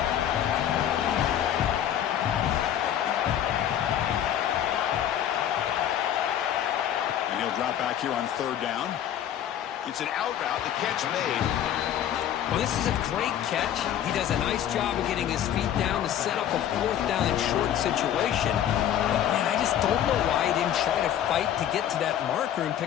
And he'll drop back here on 3rd down. It's an out route. The catch made. Well, this is a great catch. He does a nice job of getting his feet down to set up a 4th down and short situation. But, man, I just don't know why he didn't try to fight to get to that marker and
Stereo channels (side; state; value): right; quieter; 10.5 dB